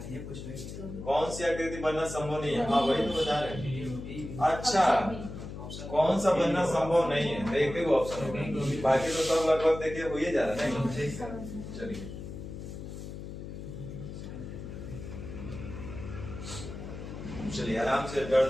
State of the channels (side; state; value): left; noise; hum, 9 dB below the sound